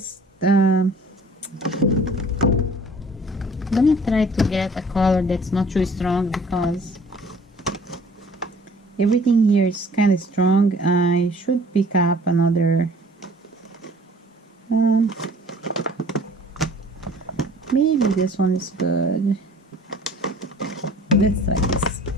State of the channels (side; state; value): both; normal; correlation 0.51